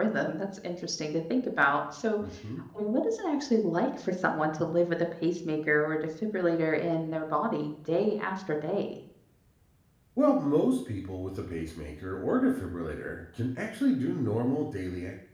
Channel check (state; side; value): identical; both; correlation 1.00